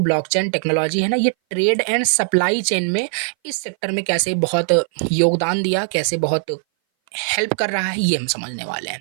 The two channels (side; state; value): left; silent; 60 dB below the other